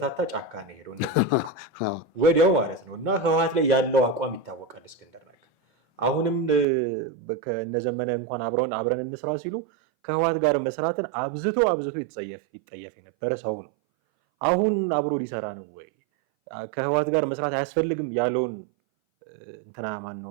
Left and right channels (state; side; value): drops out; left; at 6.7 s